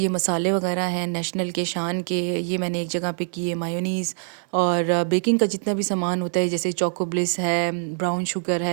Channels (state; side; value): silent; left; 59 dB below the other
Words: मसाले वगैरह हैं नेशनल के, शान के, ये मैंने एक जगह पे किए। मायोनीज़ और बेकिंग का जितना भी सामान होता है, जैसे चोको ब्लिस है, ब्राउन शुगर